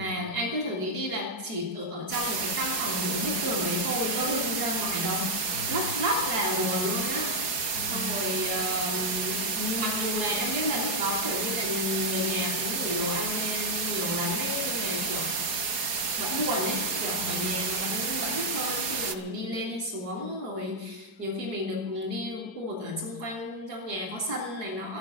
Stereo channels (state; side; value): late; right; 4.7 ms